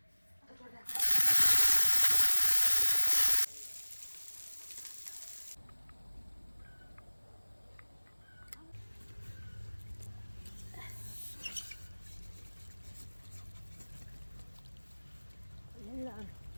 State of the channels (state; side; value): inverted; both; correlation -1.00